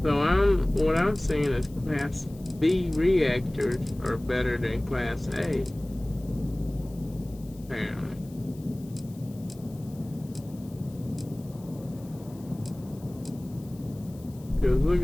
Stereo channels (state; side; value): noise; left; hiss, 25 dB below the sound